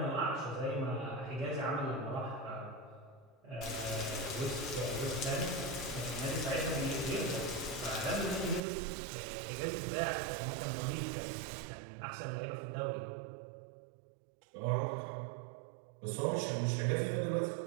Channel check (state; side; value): drops out; left; at 8.6 s